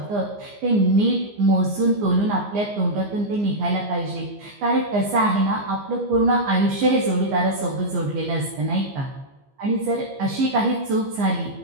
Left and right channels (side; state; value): left; late; 15 ms